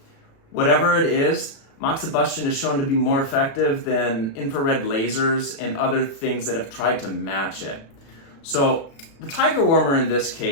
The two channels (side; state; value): right; late; 36 ms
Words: whatever it is, Moxibustion is shown to be more effective than infrared lasers and other things that have tried to match it. So the Tiger Warmer in this